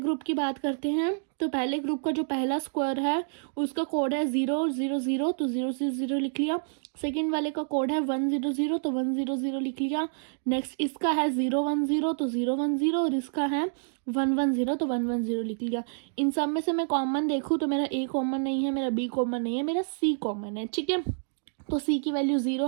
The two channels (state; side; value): silent; left; digital silence